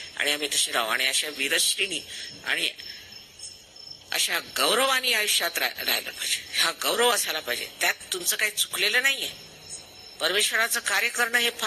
आणि आम्ही तसे राहू. आणि अशा वीरश्रीनी आणि अशा गौरवानी आयुष्यात राहिलं पाहिजे. हा गौरव असायला पाहिजे. त्यात तुमचं काही चुकलेलं नाहीये. परमेश्वराचं कार्य करणं हे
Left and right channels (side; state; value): both; identical; correlation 1.00